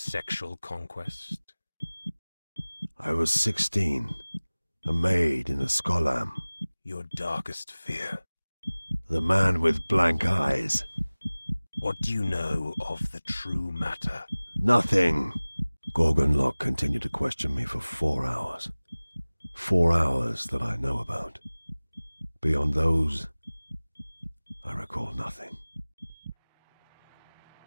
conquest? I was 16, a maid in a skolam. Your darkest fear? The man with blank eyes. What do you know of the true matter? Nothing. Gorgon Locke continued to question me for 4 hours. 4 hours that I know about. Beyond those, I recall nothing.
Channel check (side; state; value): both; inverted; correlation -1.00